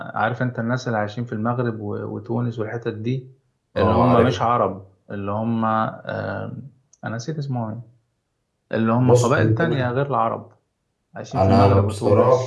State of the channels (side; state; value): both; identical; correlation 1.00